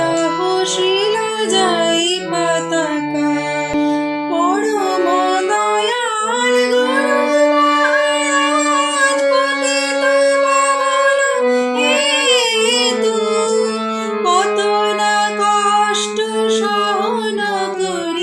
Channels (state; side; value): identical; both; correlation 1.00